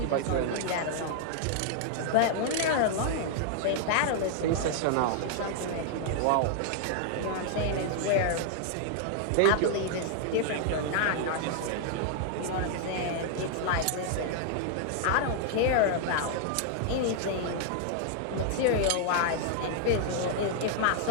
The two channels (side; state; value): both; different; correlation -0.01